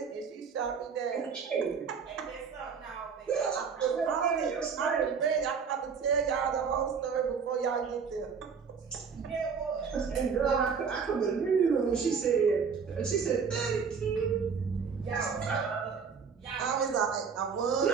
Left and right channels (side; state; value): left; quieter; 6.0 dB